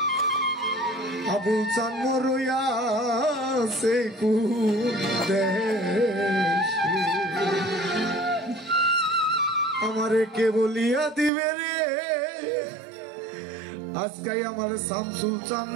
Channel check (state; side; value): drops out; left; at 11.3 s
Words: আবুল চাঁদ মরইয়াছে কোন দেশে, আমারে কে বলিয়া দিবে রে, আজকে আমার শামসুল চাঁদ